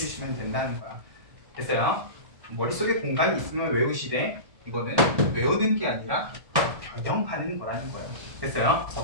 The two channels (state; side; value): late; left; 1.2 ms